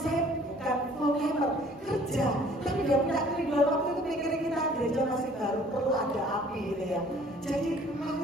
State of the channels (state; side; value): normal; both; correlation 0.55